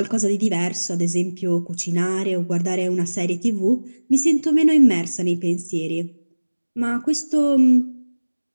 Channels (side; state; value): both; inverted; correlation -1.00